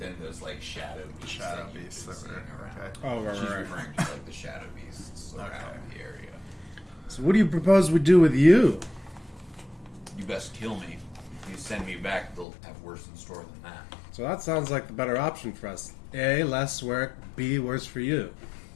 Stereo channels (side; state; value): right; drops out; at 12.5 s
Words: those like shadow beasts that you've been seeing around. Okay. Oh, right, She's right. referring to like the shadow beasts around the area. So what do you propose we do with you? You best kill me. If you send me back, they'll have worse in store than that. So that sounds like the better option for us. A, less work. B, worse for you.